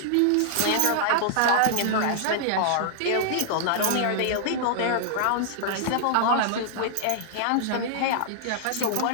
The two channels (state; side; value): different; both; correlation -0.01